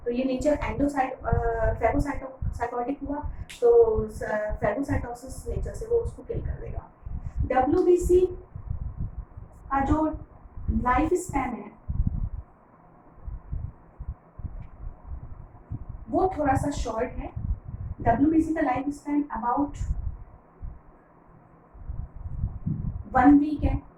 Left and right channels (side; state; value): both; identical; correlation 1.00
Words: तो ये नेचर फैगोसाइटोटिक हुआ, तो फैगोसाइटोसिस नेचर से वो उसको किल कर देगा. WBC का जो लाइफ स्पैन है वो थोड़ा सा शॉर्ट है. WBC का लाइफ स्पैन अबाउट 1 वीक है.